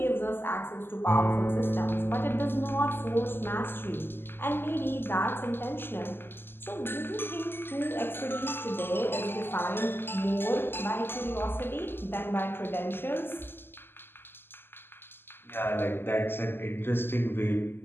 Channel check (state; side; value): late; right; 0.10 ms